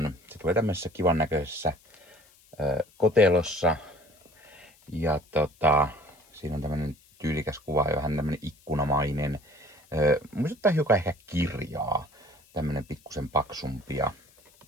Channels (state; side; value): noise; left; hiss, 29 dB below the sound